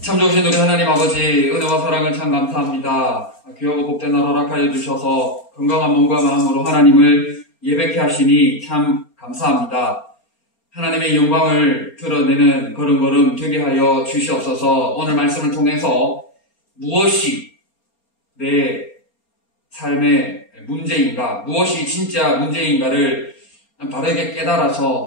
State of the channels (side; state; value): right; late; 4.3 ms